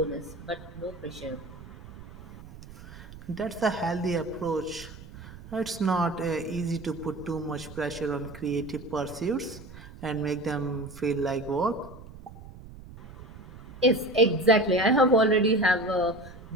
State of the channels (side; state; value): right; noise; rumble, 16 dB below the sound